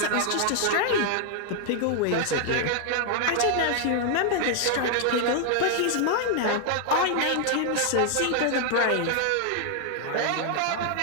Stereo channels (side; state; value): both; different; correlation 0.00